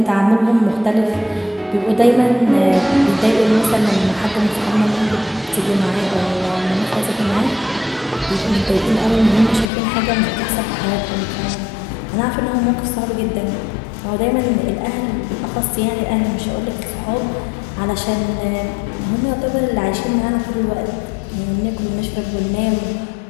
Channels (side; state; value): right; drops out; at 9.7 s